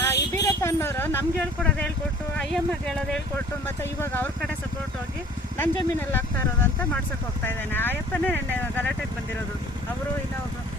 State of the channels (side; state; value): both; normal; correlation 0.50